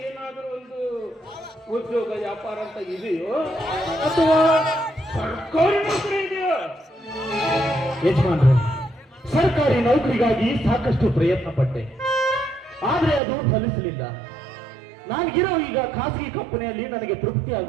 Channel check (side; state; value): left; drops out; at 13.2 s